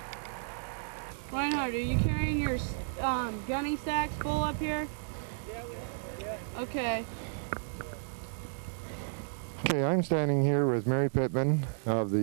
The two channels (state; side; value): silent; left; digital silence